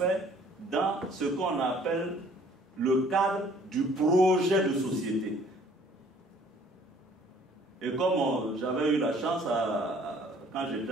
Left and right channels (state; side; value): normal; both; correlation 0.57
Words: dans ce qu'on appelle le cadre du projet de société. Et comme j'avais eu la chance, quand j'étais